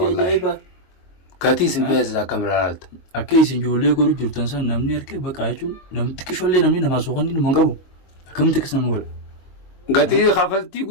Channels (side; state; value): right; late; 22 ms